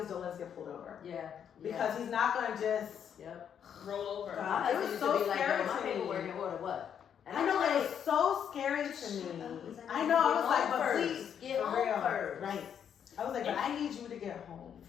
don't let us get pulled over. Yeah. Because he's not gonna just roll over. God, it was so scary my to me. paperwork in order, what? And I know, I'm it was so scary to me. I know, I was like, but please, get for home real. first. Right. I was like, but I need you to get home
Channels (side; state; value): right; quieter; 8.4 dB